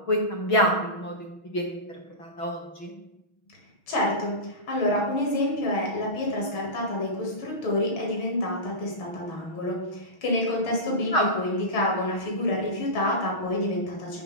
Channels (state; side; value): late; right; 6.3 ms